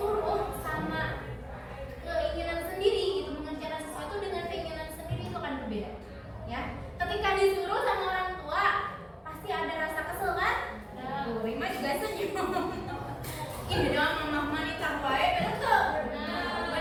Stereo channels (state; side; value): identical; both; correlation 1.00